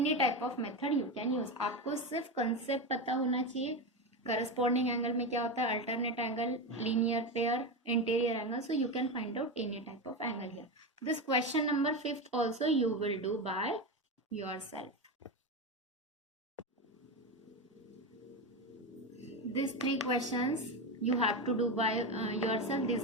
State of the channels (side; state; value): both; normal; correlation 0.16